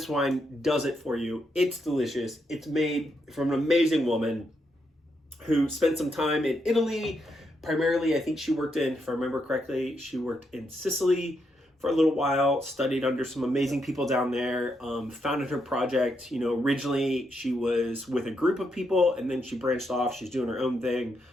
wine does it for you. It's delicious. It's made from an amazing woman who spent some time in Italy. Primarily, I think she worked if I remember correctly, she worked in Sicily for a little while, studied under some amazing people down there, founded her project. Originally she was with a group of people and then she branched off. She's doing her own thing.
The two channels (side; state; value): both; normal; correlation 0.80